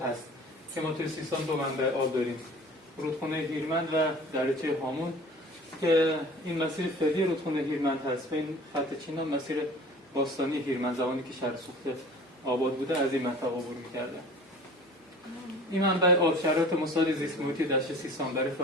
هست که ما توی سیستان دو منبع آب داریم، رودخونه هیرمند و دریاچه هامون، که این مسیر فعلی رودخونه هیرمند هست. این خط چینا مسیر باستانی هیرمند، زمانی که شهر سوخته آباد بوده از این منطقه عبور می‌کرده. این منبع آب شرایط مساعد زیست محیطی دشت سیستان برای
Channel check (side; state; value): both; normal; correlation 0.43